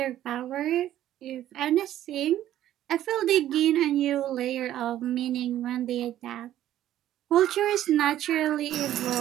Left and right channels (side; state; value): left; quieter; 12.5 dB